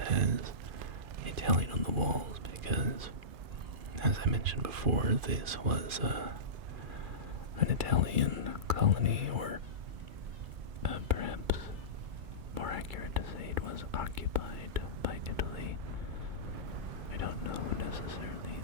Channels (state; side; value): late; left; 2.4 ms